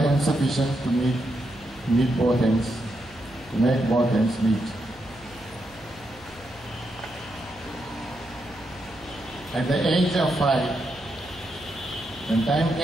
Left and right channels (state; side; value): noise; right; hum, 23 dB below the sound